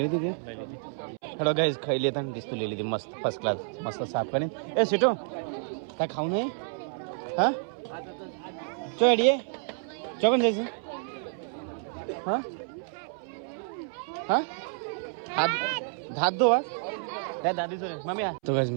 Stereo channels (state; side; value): silent; left; 58 dB below the other